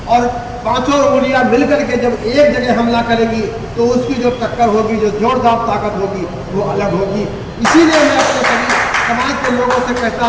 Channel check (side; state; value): both; identical; correlation 1.00